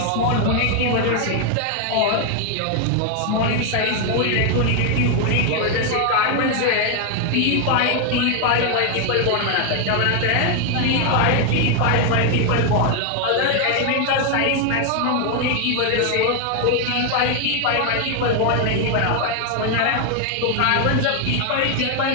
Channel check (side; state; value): both; different; correlation 0.00